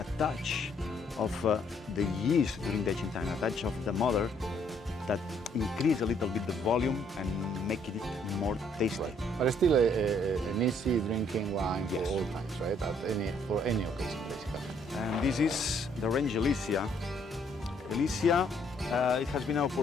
touch of the yeast during the aging time, a touch of the mother that increase a little bit the volume and make it more tasty. Right. But still an easy drinking wine for all times, right? For any occasion, basically. And this is the range Elysia. Elysia, it has been an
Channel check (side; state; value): both; normal; correlation 0.67